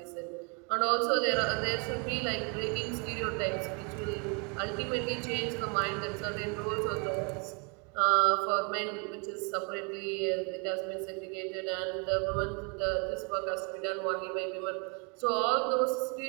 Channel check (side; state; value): left; quieter; 34.7 dB